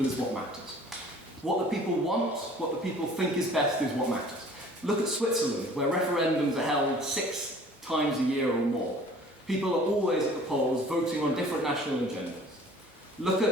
is what matters. What the people want, what the people think is best is what matters. Look at Switzerland, where referendums are held 6 times a year or more. People are always at the polls voting on different national agendas. Look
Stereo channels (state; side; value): normal; both; correlation 0.50